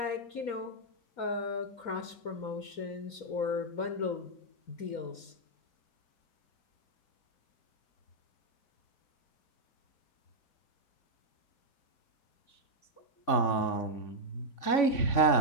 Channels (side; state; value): right; late; 3.9 ms